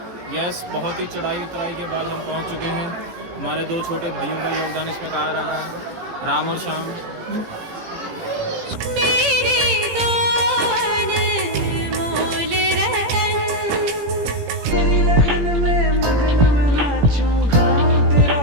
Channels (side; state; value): left; late; 17 ms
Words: यस, बहुत ही चढ़ाई उतराई के बाद हम पहुंच चुके हैं। हमारे दो छोटे भाइयों का योगदान इसमें कहा रहा है, राम और श्याम।